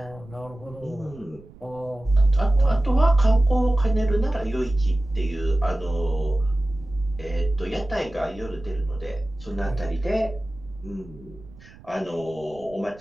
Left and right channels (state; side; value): noise; right; rumble, 22 dB below the sound